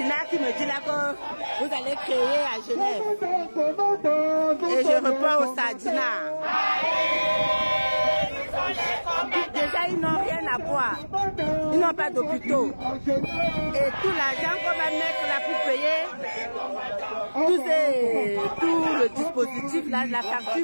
qui me dit là que vous allez créer à Genève. Et je reprends au Sardina. Déjà, ils n'ont rien à boire. Ils n'ont pas d'hôpitaux. Et tout l'argent qu'on va mettre là pour payer, tout le dispositif, là, la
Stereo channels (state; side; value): inverted; both; correlation -1.00